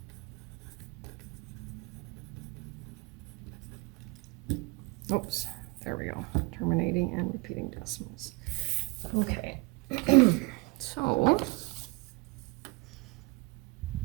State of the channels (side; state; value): left; quieter; 26.8 dB